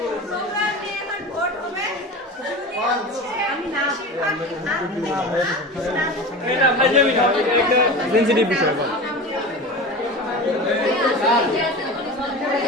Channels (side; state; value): both; normal; correlation 0.30